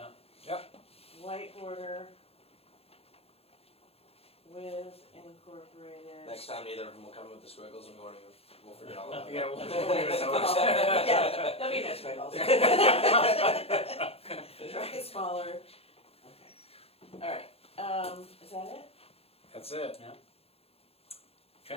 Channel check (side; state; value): right; late; 0.29 ms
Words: Yep. White border with incorporated. Next time, neither of them will come with the squiggles, and we'll forget all about it. Yeah, we'll leave it notice. Yeah, there'll be no squiggles. Try it smaller. Okay. Alright, is that it? That's it.